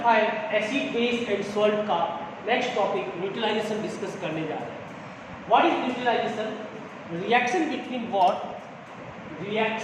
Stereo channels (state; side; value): identical; both; correlation 1.00